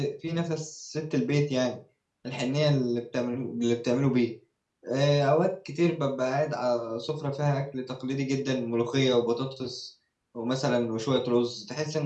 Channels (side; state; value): both; identical; correlation 1.00